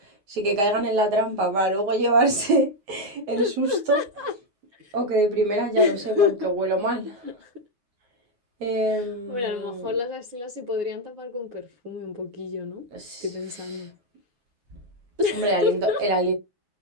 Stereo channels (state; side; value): late; left; 10 ms